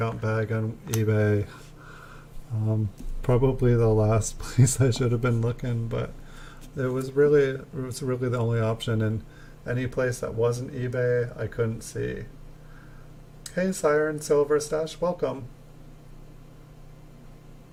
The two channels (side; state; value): both; identical; correlation 1.00